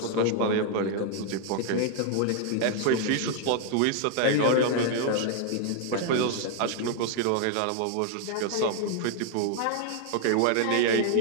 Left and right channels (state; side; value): different; both; correlation 0.00